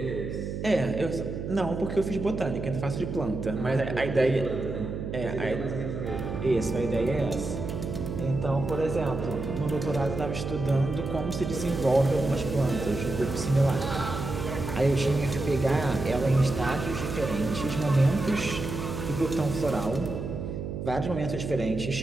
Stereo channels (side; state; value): right; noise; hum, 5 dB below the sound